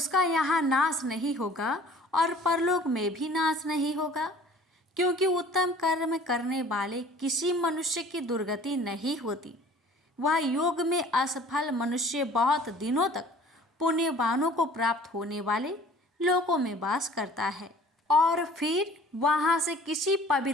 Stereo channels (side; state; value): both; normal; correlation 0.49